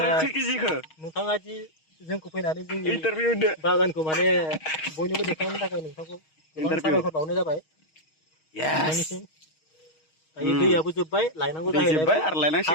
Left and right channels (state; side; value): late; right; 6.4 ms